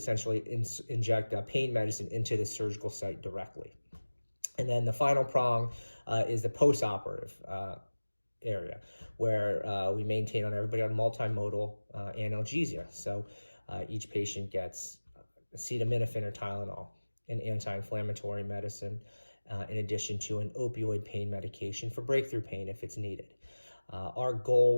inject pain medicine into the surgical site directly. And then the final prong is the postoperative area, where we maintain everybody on multimodal analgesia. So each patient gets acetaminophen or Tylenol, an anti-inflammatory medicine, in addition to an opioid pain medication for breakthrough pain if it's needed. Our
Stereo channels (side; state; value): both; inverted; correlation -1.00